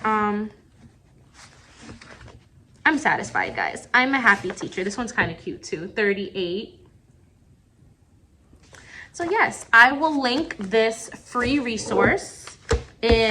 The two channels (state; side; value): identical; both; correlation 1.00